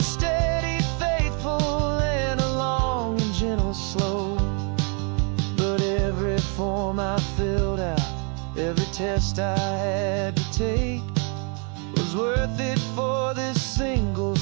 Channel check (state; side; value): quieter; left; 37.2 dB